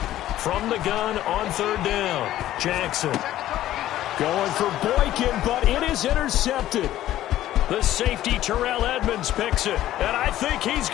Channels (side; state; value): right; quieter; 13.6 dB